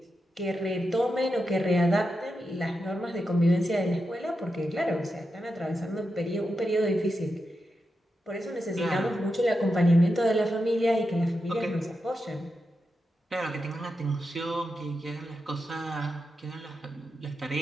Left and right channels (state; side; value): normal; both; correlation 0.88